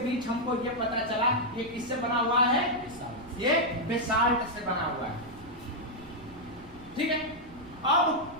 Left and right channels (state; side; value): noise; right; rumble, 21 dB below the sound